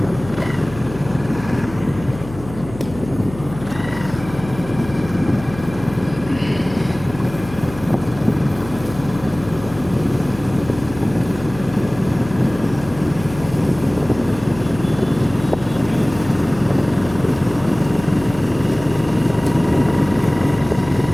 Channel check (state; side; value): noise; left; hum, 14 dB below the sound